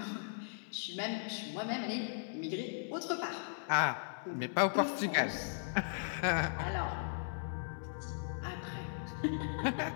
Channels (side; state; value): right; silent; 53 dB below the other